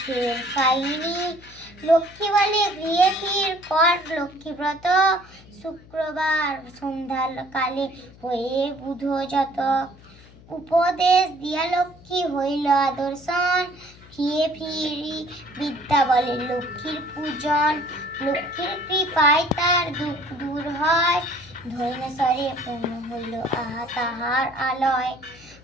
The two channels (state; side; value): noise; left; hum, 23 dB below the sound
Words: কাহিনী। লক্ষ্মী বলে গৃহে ফির কর লক্ষ্মীব্রত, শুক্রবার সন্ধ্যা কালে হয়ে বুধ যত। উপদেশ দিয়া লক্ষ্মী হইল আদর্শন, ফিরে ফিরি বিদ্যা বলে লক্ষ্মীর পূজন। লক্ষ্মীর কৃপায় তার দুঃখ দূর হয়, ধৈর্যস্বরে পূর্ণ হইল আহা তাহার আলয়।